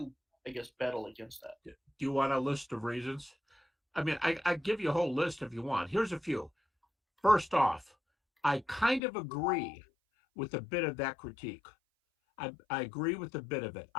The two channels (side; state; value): right; drops out; at 9.0 s